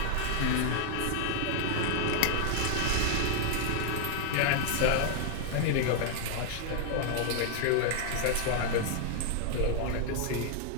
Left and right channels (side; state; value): both; different; correlation 0.00